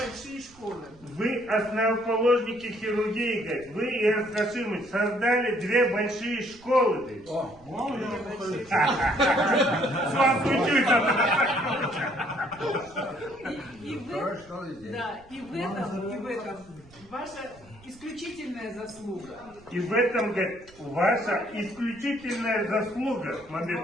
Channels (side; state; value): right; noise; rumble, 25 dB below the sound